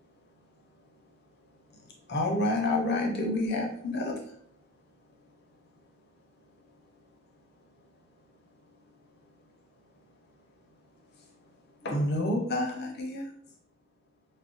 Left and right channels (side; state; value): both; normal; correlation 0.37